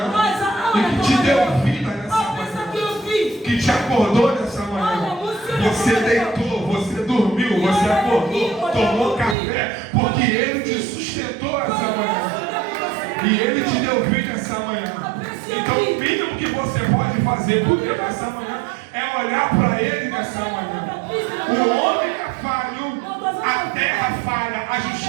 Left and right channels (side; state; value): left; drops out; at 9.3 s